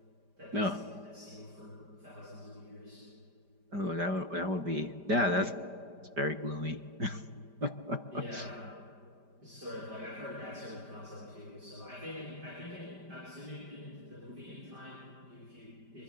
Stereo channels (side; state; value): left; late; 5.0 ms